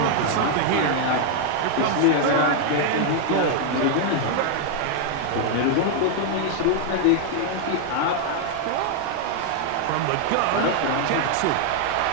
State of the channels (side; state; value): both; different; correlation 0.00